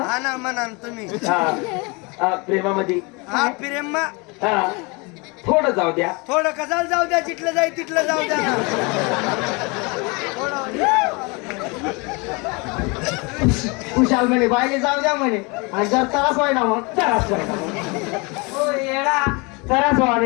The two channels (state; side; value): quieter; right; 28.6 dB